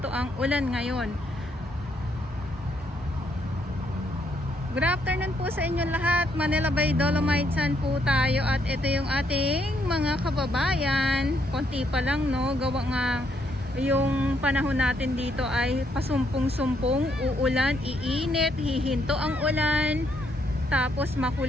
ang ulan ngayon. Good afternoon po sa inyong lahat, Manila Bay, Dolomites Sun po tayo at ito yung ating mga kababayan, konti pa lang no, gawa nga yung panahon natin dito ay pasumpong-sumpong, uulan, iinit, hihinto ang ulan, tapos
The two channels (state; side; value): normal; both; correlation 0.74